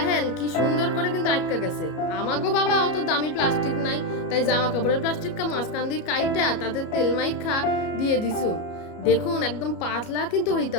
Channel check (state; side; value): late; right; 33 ms